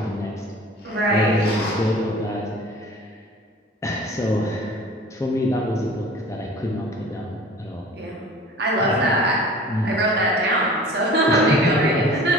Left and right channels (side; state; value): both; normal; correlation 0.44